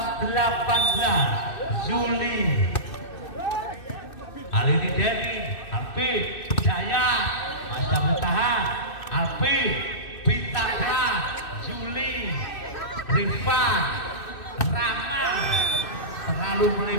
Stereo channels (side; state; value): right; late; 2.6 ms